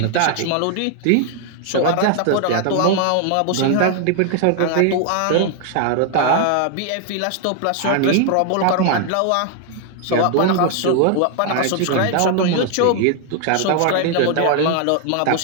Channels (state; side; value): different; both; correlation 0.00